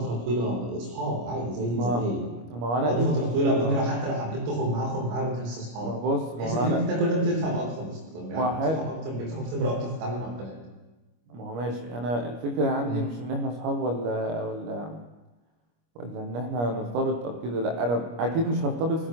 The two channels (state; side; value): late; left; 25 ms